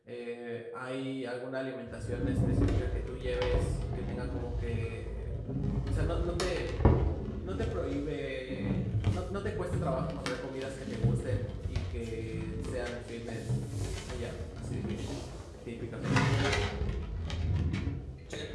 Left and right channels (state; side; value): identical; both; correlation 1.00